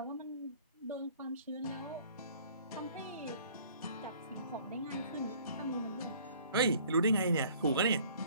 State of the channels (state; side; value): inverted; both; correlation -0.54